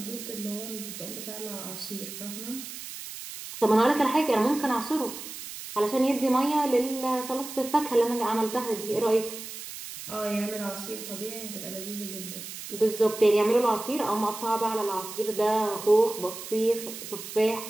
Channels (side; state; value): right; noise; hiss, 10 dB below the sound